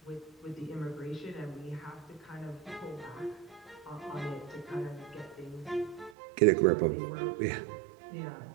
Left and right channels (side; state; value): left; drops out; at 6.2 s